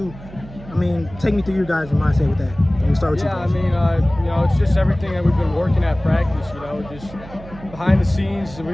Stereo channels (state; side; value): noise; right; hum, 17 dB below the sound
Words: I mean, take me through your guys' mindset with that? Let me start with you. Yeah, I mean, you know, it's just everything that we've been working at practice, you know, just behind the scenes, we've